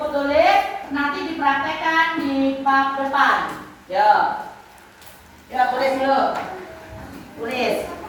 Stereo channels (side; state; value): both; identical; correlation 1.00